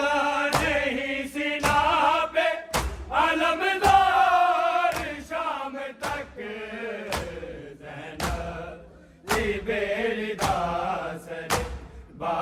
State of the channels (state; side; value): identical; both; correlation 1.00